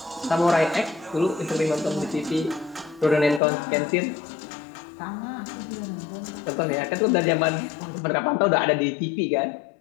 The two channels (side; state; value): right; drops out; at 3.4 s